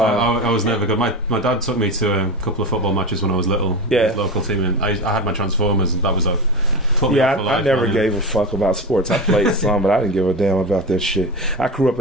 was never good. My dad took me to a couple of football matches when I was little. Yeah. His local team, and I had my Transformers, and that was I never gave a fuck about sports. I played some, but I didn't give a damn about that shit. I grew up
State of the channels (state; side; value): normal; both; correlation 0.23